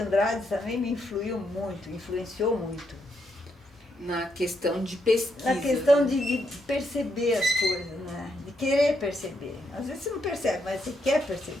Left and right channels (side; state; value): both; normal; correlation 0.78